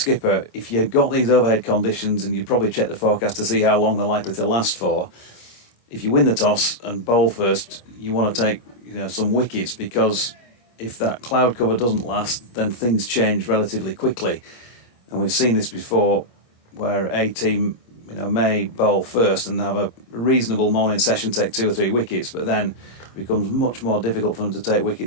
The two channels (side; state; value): right; late; 25 ms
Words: If you've got these overhead conditions, and you probably check the forecast to see how long they're likely to last for, if you win the toss and bowl first, you want to take some wickets, because if that cloud cover doesn't last, then things change relatively quickly. And we've seen this before, where a team may bowl first and have a reasonable morning session, take 2 or 3 wickets, but then it becomes much more difficult for them to take